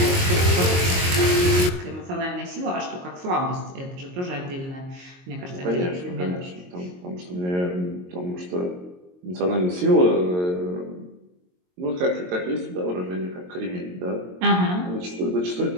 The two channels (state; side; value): late; left; 22 ms